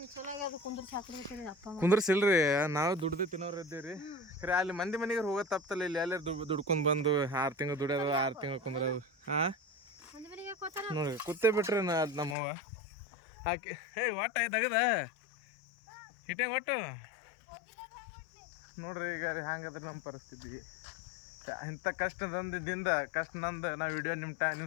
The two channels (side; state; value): right; drops out; at 12.4 s